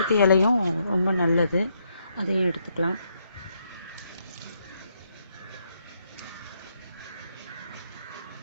இலையும் ரொம்ப நல்லது, அதையும் எடுத்துக்கலாம்.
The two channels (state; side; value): inverted; both; correlation -0.76